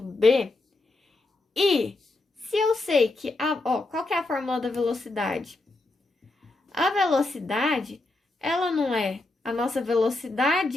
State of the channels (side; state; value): right; quieter; 3.0 dB